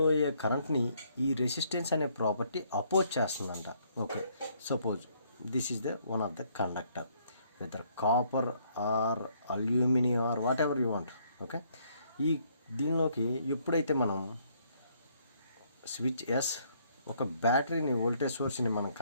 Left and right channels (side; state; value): both; inverted; correlation -0.68